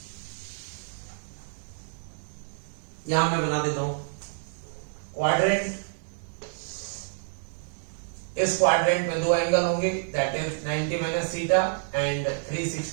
यहां मैं बना देता हूं क्वाड्रेंट। इस क्वाड्रेंट में दो एंगल होंगे, that is 90 minus theta and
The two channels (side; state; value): left; silent; 59 dB below the other